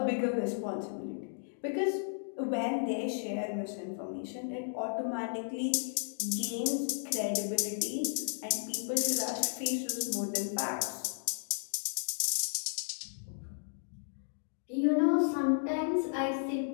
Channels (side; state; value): right; silent; digital silence